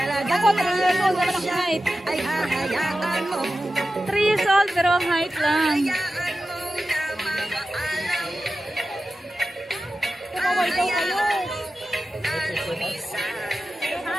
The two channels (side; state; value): both; normal; correlation 0.93